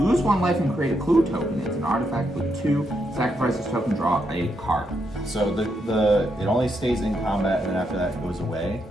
1 life and create a clue token. It's an artifact with 2. Sacrifice this token, draw a card. So it only stays in combat, and then after that it goes away.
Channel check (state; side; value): normal; both; correlation 0.80